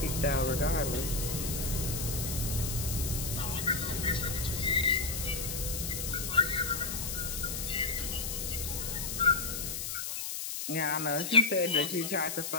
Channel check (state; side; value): noise; left; hiss, 4 dB below the sound